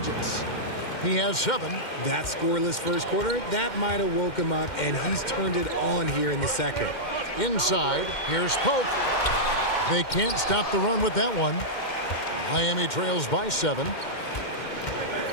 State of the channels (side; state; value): right; late; 2.1 ms